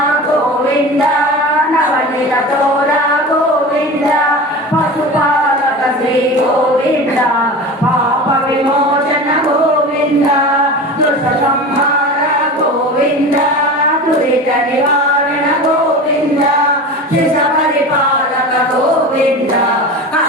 గోవింద నవనీత తోర గోవింద పశుపాలక శ్రీ గోవింద పాప విమోచన గోవింద దుష్ట సంహార గోవింద దురిత నివారణ గోవింద శిశ పరిపాలక గోవింద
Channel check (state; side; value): normal; both; correlation 0.31